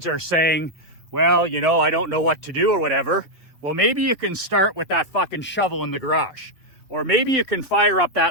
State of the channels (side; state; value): both; normal; correlation 0.00